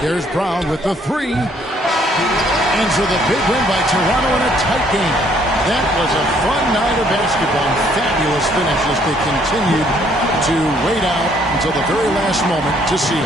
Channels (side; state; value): both; normal; correlation 0.65